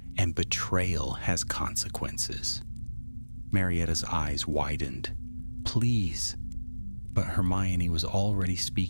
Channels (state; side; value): inverted; both; correlation -1.00